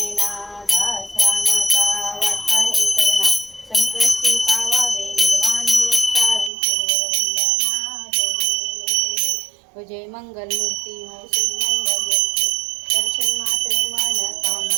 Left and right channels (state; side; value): drops out; left; at 6.5 s